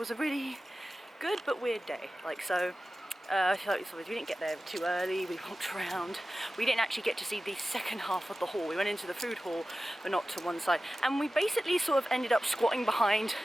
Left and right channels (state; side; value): normal; both; correlation 0.95